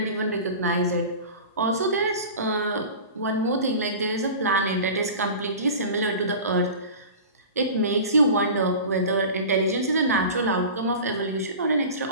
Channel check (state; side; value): inverted; both; correlation -0.36